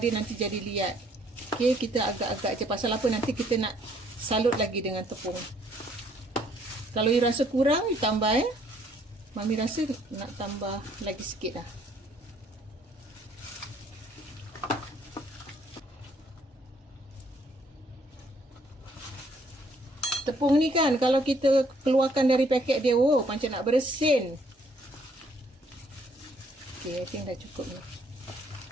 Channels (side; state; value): both; normal; correlation 0.65